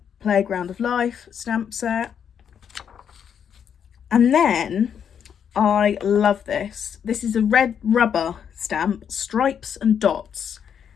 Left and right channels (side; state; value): right; quieter; 8.0 dB